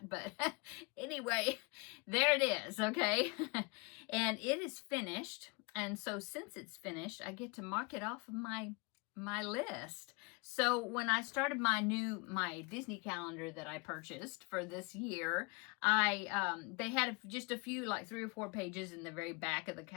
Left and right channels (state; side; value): quieter; right; 29.8 dB